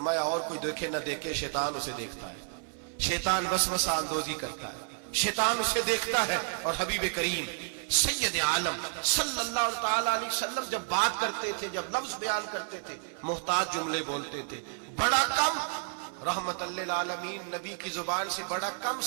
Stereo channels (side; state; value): left; silent; 57 dB below the other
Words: اور کوئی دیکھے نہ دیکھے شیطان اسے دیکھتا ہے, شیطان وسوسہ اندوزی کرتا ہے, شیطان اسے دیکھتا ہے. اور حبیب کریم سید عالم صلی اللہ تعالی علیہ وسلم جب بات کرتے تھے, جب لفظ بیان کرتے تھے, محتاج جملے بولتے تھے, بڑا کم, رحمت للعالمین نبی کی زبان سے بڑا کم